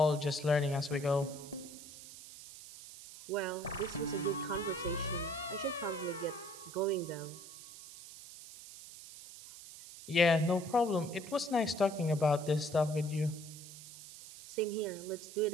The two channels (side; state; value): right; noise; hiss, 15 dB below the sound